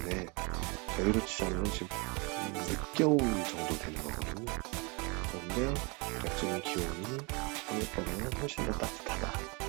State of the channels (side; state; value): left; quieter; 29.7 dB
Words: 저희로 치자면 지금 늦겨울 정도 되는 거거든요. 그런데 대략적인 기온이 한국보다는 훨씬 더 따뜻하다